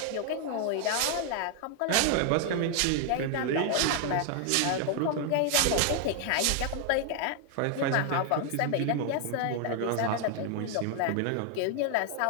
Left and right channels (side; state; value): both; different; correlation 0.00